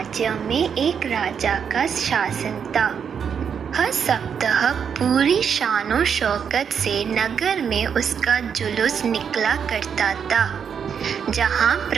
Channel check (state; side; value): quieter; left; 7.2 dB